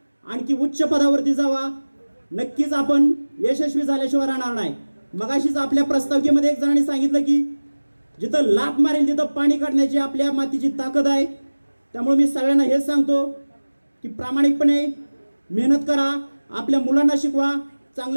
आणखी उच्च पदावरती जावा. नक्कीच आपण यशस्वी झाल्याशिवाय राहणार नाही. मगाशीच आपल्या प्रस्ताविकेमध्ये एक जणांनी सांगितलं की जिथं लाथ मारेल तिथं पाणी काढण्याची आपल्या मातीची ताकद आहे. त्यामुळे मी सगळ्यांना हेच सांगतो की प्रामाणिकपणे मेहनत करा, आपल्या मुलांना शिकवा,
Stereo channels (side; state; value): both; inverted; correlation -1.00